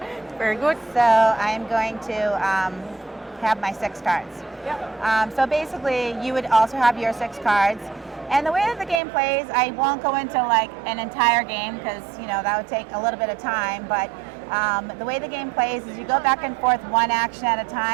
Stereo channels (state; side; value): drops out; left; at 9.0 s